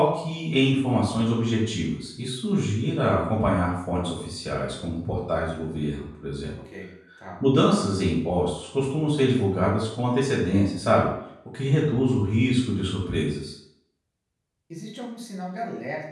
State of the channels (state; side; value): identical; both; correlation 1.00